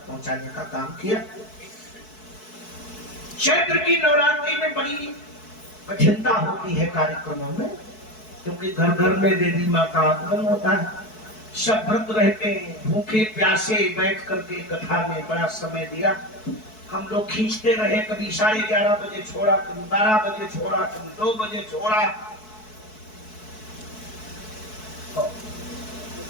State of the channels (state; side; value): late; right; 4.6 ms